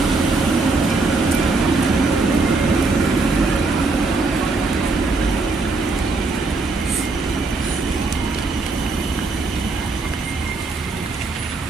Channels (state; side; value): quieter; left; 3.7 dB